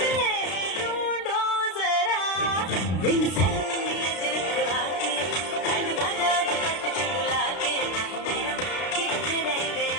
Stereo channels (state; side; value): late; right; 33 ms